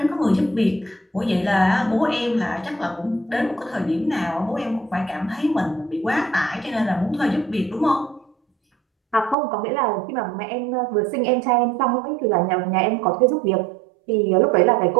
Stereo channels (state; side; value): drops out; left; at 9.3 s